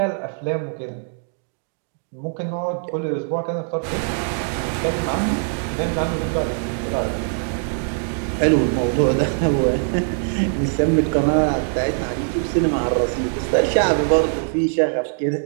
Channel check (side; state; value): left; silent; digital silence